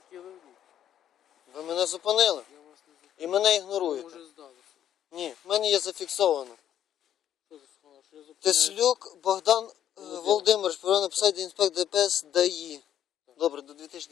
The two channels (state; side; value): quieter; right; 10.5 dB